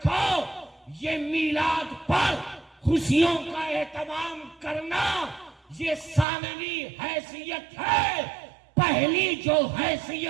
یہ میلاد پر خوشیوں کا اہتمام کرنا یہ ثانوی حیثیت ہے. پہلی جو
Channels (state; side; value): drops out; left; at 6.2 s